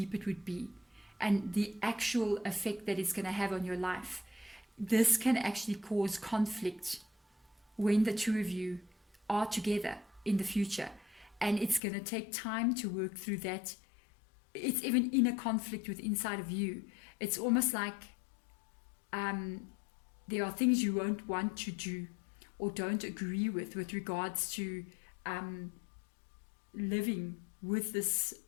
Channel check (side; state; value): right; drops out; at 11.8 s